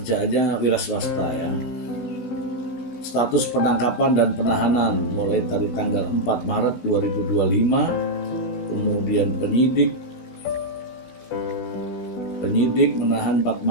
wira swasta ya. Status penangkapan dan penahanan mulai dari tanggal 4 Maret 2025. Kemudian penyidik menahan 4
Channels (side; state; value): right; late; 16 ms